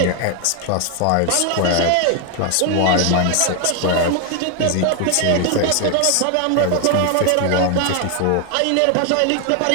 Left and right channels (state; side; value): different; both; correlation 0.00